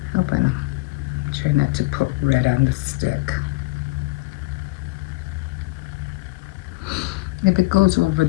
Hope I don't try not to put red on the stick. If it goes over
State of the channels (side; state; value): right; quieter; 22.4 dB